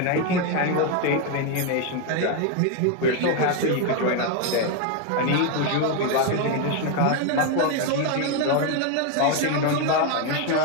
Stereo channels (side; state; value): both; different; correlation 0.01